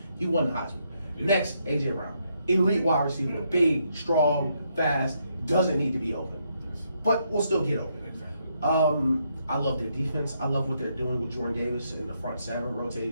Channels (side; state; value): both; inverted; correlation -0.76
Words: He won the Heisman. Next, A.J. Brown. Elite wide receiver, big, strong, fast, doesn't need to be open. But will still get open. Exactly. I love their defense. I love what they're doing with Jordan Davis in the front seven,